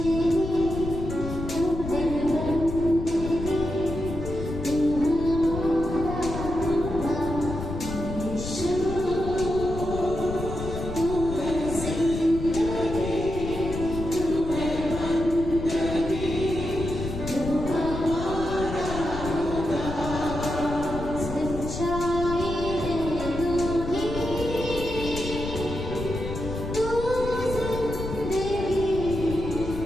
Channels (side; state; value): left; noise; rumble, 7 dB below the sound